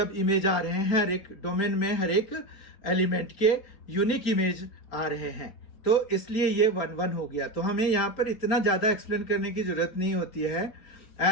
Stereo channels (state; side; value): late; right; 4.4 ms